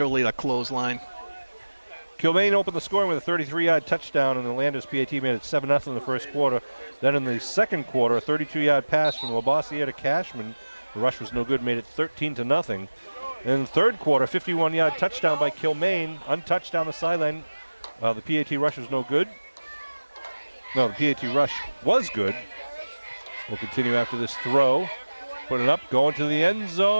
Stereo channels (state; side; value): inverted; both; correlation -1.00